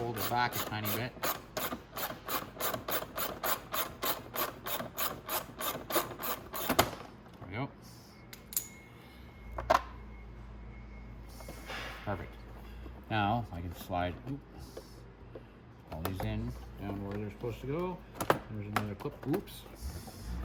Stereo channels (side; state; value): both; identical; correlation 1.00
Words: it back a tiny bit. There we go. Perfect. Now I can slide all these in down where they're supposed to go. There's another clip. Oops.